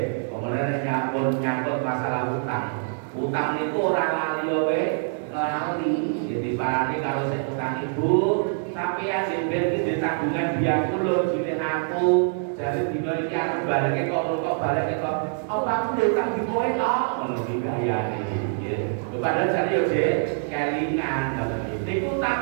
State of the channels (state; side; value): silent; left; digital silence